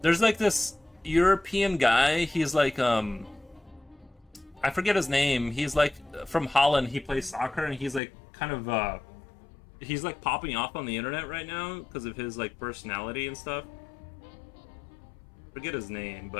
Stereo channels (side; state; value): right; drops out; at 8.0 s